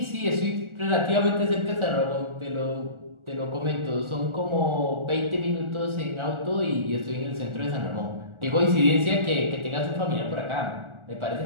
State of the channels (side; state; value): left; late; 1.4 ms